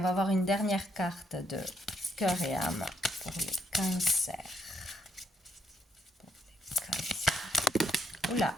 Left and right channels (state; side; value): normal; both; correlation 0.75